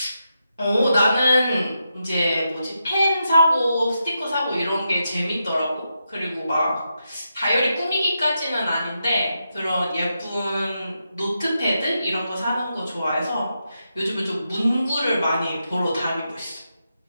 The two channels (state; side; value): inverted; both; correlation -0.85